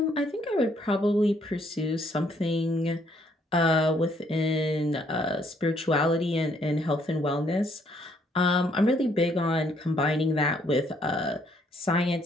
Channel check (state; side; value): normal; both; correlation 0.68